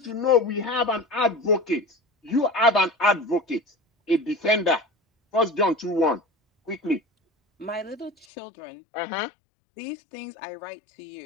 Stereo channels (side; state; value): right; drops out; at 8.2 s